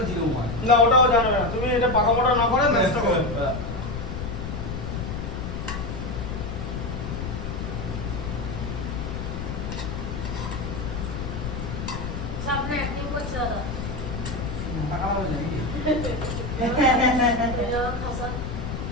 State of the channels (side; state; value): left; noise; rumble, 5 dB below the sound